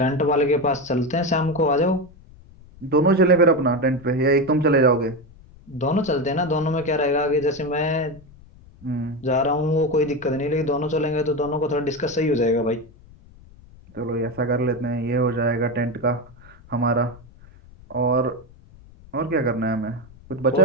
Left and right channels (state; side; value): noise; left; rumble, 23 dB below the sound